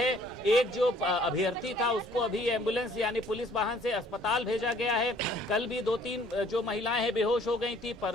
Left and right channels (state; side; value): normal; both; correlation 0.58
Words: एक जो अभ्यर्थी था उसको अभी एम्बुलेंस यानी पुलिस वाहन से अस्पताल भेजा गया है। कल भी 2-3 जो महिलाएं हैं बेहोश हो गई थी,